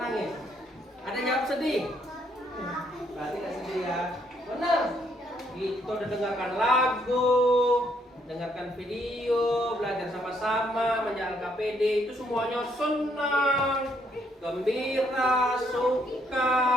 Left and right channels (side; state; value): both; normal; correlation 0.71